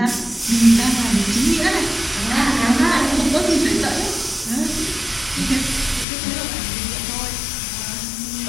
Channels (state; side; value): drops out; right; at 6.1 s